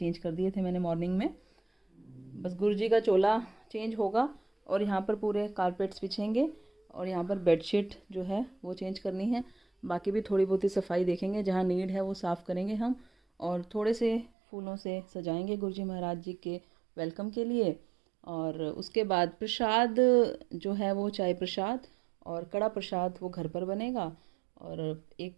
कर दिए थे मैंने मॉर्निंग में। बस गुरुजी का चोला चेंज होगा और यहाँ पर पूरे कारपेट्स बिछेंगे और यहाँ पर बेडशीट जो है वो चेंज करनी है। बाकी भी थोड़ी बहुत ही सफाई देखेंगे, जहाँ नीड है वो साफ़ करेंगे हम। और थोड़े से फूलों से सजाएंगे गुरुजी महाराज जी के वेलकम के लिए। और उसके बाद प्रसाद जो है वो चाय प्रसाद और कड़ा प्रसाद वो घर पर बनेगा। और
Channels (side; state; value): left; drops out; at 14.3 s